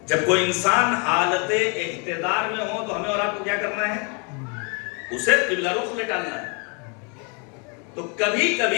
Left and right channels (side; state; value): right; quieter; 35.1 dB